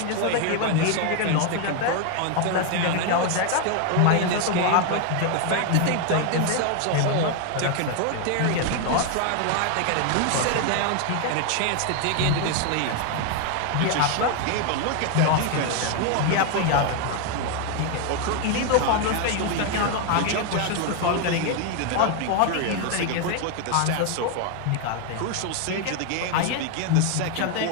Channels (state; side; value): different; both; correlation 0.01